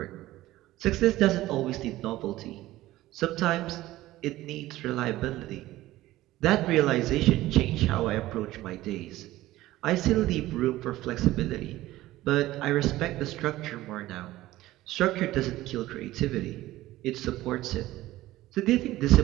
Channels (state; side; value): quieter; left; 16.3 dB